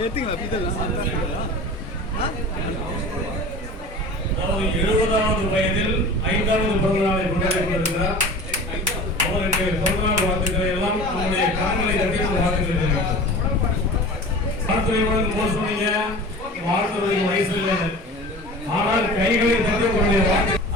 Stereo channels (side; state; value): both; normal; correlation 0.38